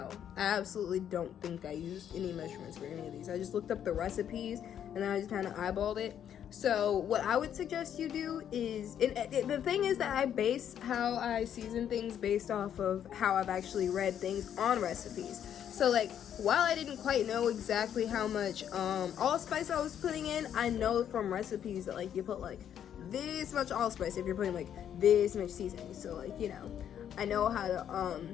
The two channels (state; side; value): quieter; right; 9.5 dB